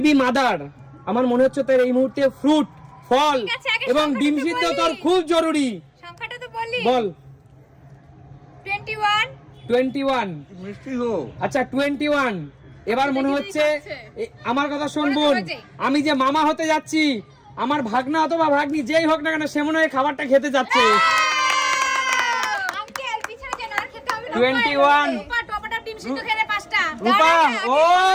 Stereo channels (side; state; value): both; identical; correlation 1.00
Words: মাদার, আমার মনে হচ্ছে তোর এই মুহূর্তে ফ্রুট, ফল ঠিক আছে, আগে এবং সংখ্যাটা ডিম তো সিদ্ধ বলি। তোর খুব জরুরি। সংখ্যাটা তো বলি। বল। 21। 21। মিষ্টি গো। আচ্ছা 21। এবার মনে হচ্ছে আমার কথা শোন মনে তো বোন, হয়েছে। আমি যে মামা হতে যাচ্ছি, আমার ভাগনা অথবা ভাগ্নি যেই হোক না কেন সে মনে হয় খাবারটা খেতে যাচ্ছে। আঙ্কেল পিছনে যেন আর খেতে হবে না। 21। রূপা টমেটো ডিম সিদ্ধ খেলে 5টা। রূপা ও